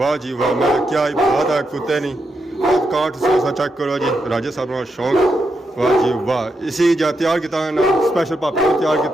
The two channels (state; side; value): normal; both; correlation 0.83